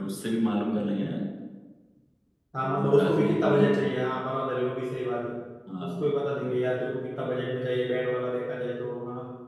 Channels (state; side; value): identical; both; correlation 1.00